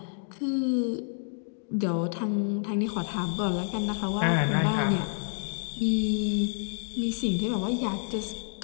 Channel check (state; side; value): silent; right; digital silence